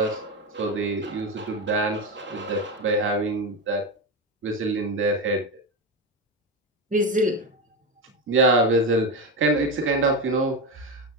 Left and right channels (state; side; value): normal; both; correlation 0.16